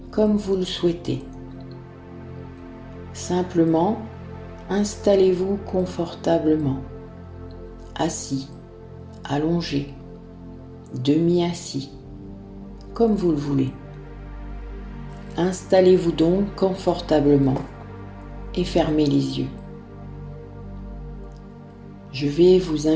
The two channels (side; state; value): both; identical; correlation 1.00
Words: comme vous le souhaitez. Simplement, installez-vous confortablement, assis, allongé, demi-assis, comme vous le voulez. Installez-vous donc confortablement et fermez les yeux. Je vais vous